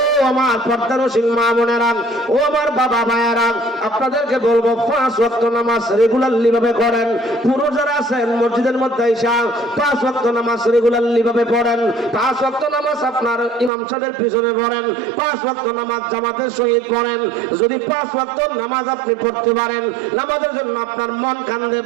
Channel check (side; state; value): left; drops out; at 13.7 s